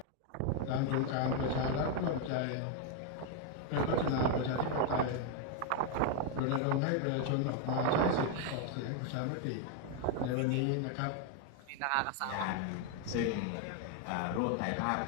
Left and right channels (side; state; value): both; different; correlation 0.01